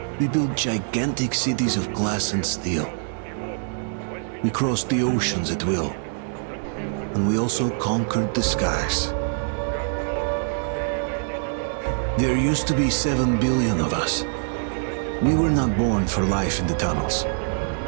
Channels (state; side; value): silent; left; digital silence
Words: We built gigantic cities of glass and steel. We crossed the oceans at will. And we also conquered the skies. There used to be 7 billion of us. We were not born for life in the tunnels.